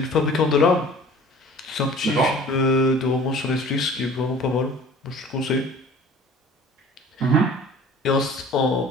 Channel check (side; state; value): both; normal; correlation 0.47